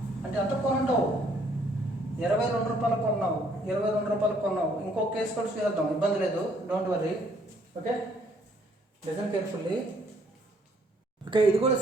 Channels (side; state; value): both; normal; correlation 0.65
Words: అంటే ఎంత కొనుంటావు? 22 రూపాయలు కొన్నావు, 22 రూపాయలు కొన్నావు. ఇంకో కేసు కూడా చేద్దాం, ఇబ్బంది లేదు, don't worry. Okay, listen carefully. Okay, ఇది కూడా